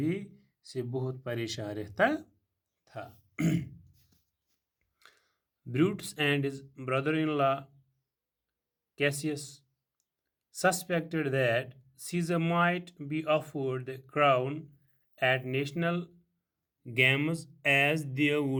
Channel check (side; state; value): both; identical; correlation 1.00